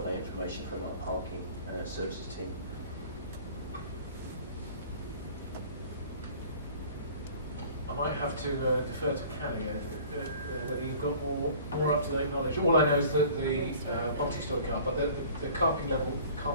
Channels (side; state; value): both; inverted; correlation -0.48